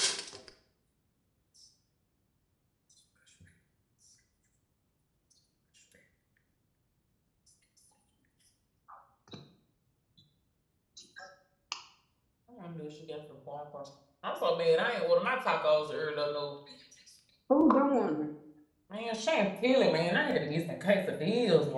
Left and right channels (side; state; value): both; identical; correlation 1.00